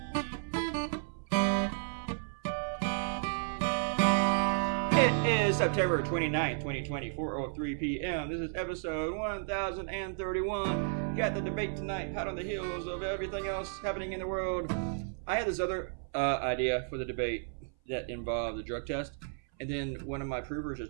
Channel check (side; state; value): left; silent; 56 dB below the other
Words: 29th, 2020, 4:03 p.m. This is episode 1031. Got the debate tonight, hot on the heels of everything else happening in the world. I had this other idea for the debate that involved the drug test, and then one of my provers